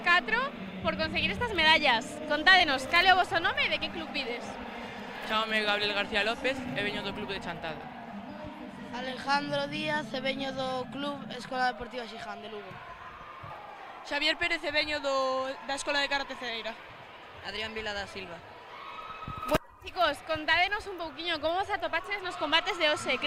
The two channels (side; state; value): both; identical; correlation 1.00